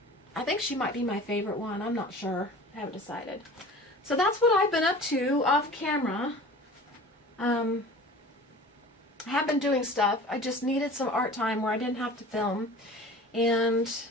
I think she might be my favorite one. I'm not sure. I haven't decided. So that's what I've been up to off camera. I have been doing stuff. I just needed some art time where I didn't have to film. And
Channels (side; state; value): both; normal; correlation 0.41